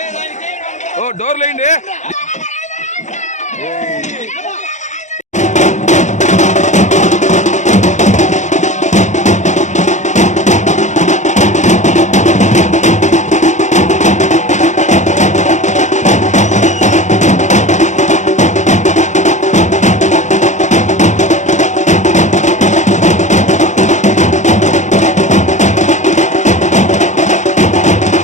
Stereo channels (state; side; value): late; right; 0.35 ms